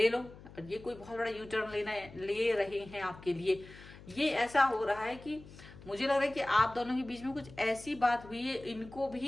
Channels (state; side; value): noise; left; hum, 18 dB below the sound